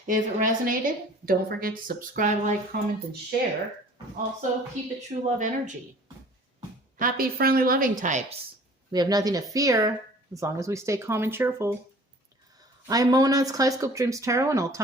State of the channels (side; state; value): both; normal; correlation 0.49